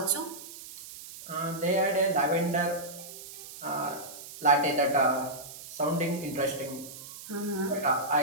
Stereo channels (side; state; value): right; noise; hiss, 14 dB below the sound